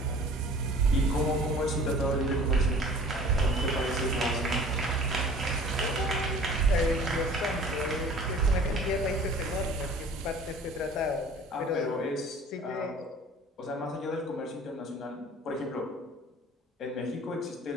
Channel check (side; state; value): both; normal; correlation 0.46